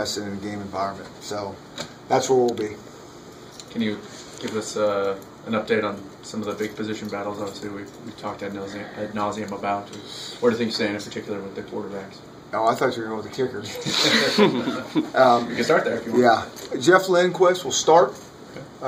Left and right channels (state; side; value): identical; both; correlation 1.00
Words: in a game environment. So that's where we'll be. Can you give us an update on some of the big position battles? Obviously, we've talked ad nauseum about. Where do things stand in particular with the quarterbacks? Oh, I thought you were going with the kickers. You can start there if you want. Yeah. Jeff Lindquist will start.